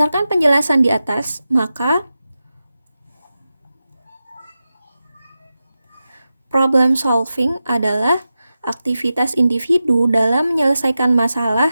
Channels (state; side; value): inverted; both; correlation -0.92